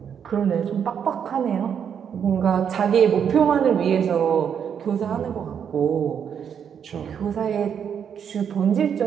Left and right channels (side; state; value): left; quieter; 7.9 dB